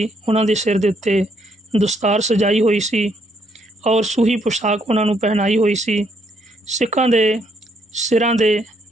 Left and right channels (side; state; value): both; normal; correlation 0.72